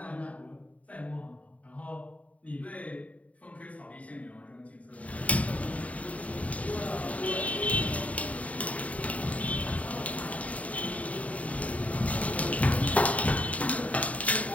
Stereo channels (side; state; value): right; late; 0.068 ms